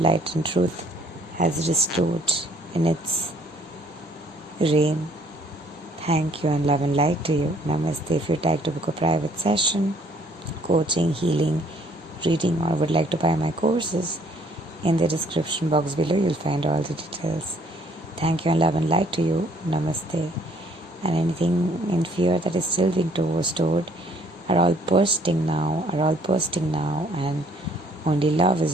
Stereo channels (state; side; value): normal; both; correlation 0.62